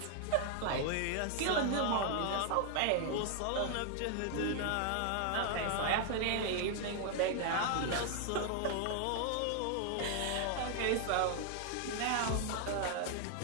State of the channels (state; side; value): different; both; correlation 0.00